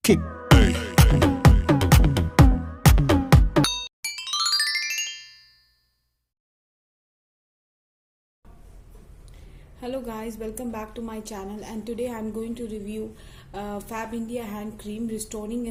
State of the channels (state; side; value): identical; both; correlation 1.00